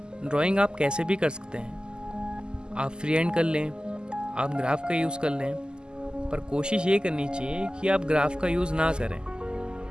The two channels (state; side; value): late; left; 0.046 ms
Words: ड्राइंग आप कैसे भी कर सकते हैं, आप फ्री हैंड कर लें, आप ग्राफ का यूज़ कर लें, पर कोशिश ये करनी चाहिए कि आप ग्राफ का यूज़ ना करें,